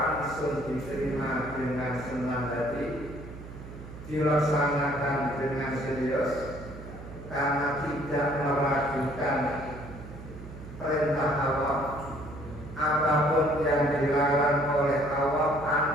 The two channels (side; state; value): right; noise; hum, 14 dB below the sound